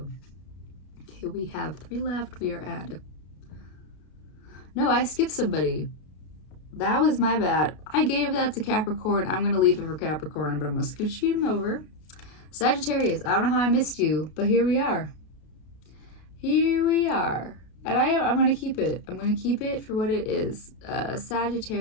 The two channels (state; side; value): late; right; 33 ms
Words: Okay, we have 3 left. We are at no, I skipped somebody. That was my bad. I gave that to Capricorn. I'm going to leave it for Capricorn, but I'm going to scooch him over. Sagittarius, I don't know how I missed you, but here we are. Here we are. And I'm going to keep it. I'm going to keep it for what it is.